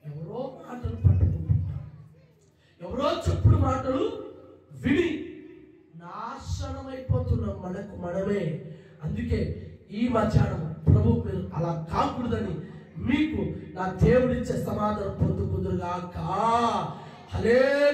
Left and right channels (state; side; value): identical; both; correlation 1.00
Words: ఎవరో మాటలు పట్టుకుంటున్నారు, ఎవరో చెప్పుడు మాటలు విని నాశనమైపోతున్నాం మనకు మనమే. అందుకే ఈ మధ్యాహ్నం ప్రభు మీరు అలా కాకూడదని మీకు నా దేవుడిచ్చే సమాధానం పొందుకుందురుగాక.